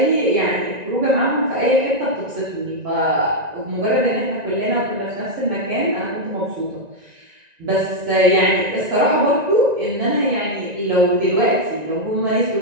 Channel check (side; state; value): left; late; 1.9 ms